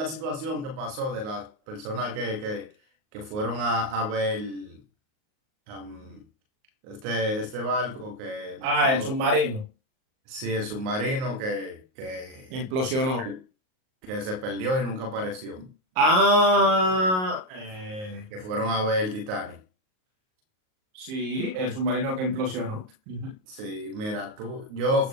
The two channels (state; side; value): late; left; 38 ms